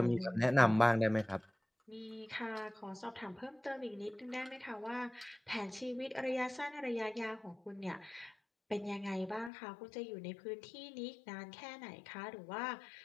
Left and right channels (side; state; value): right; drops out; at 9.5 s